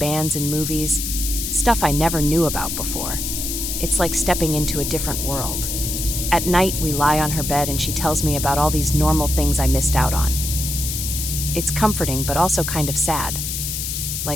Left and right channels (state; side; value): noise; left; hiss, 3 dB below the sound